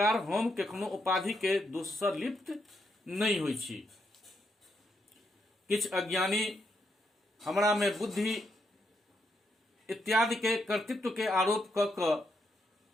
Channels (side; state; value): both; normal; correlation 0.79